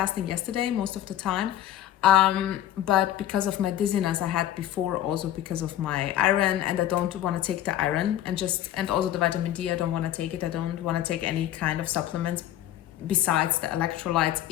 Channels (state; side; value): quieter; right; 12.2 dB